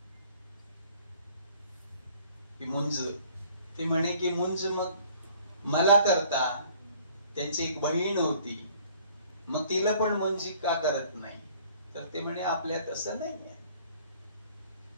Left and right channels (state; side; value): inverted; both; correlation -0.56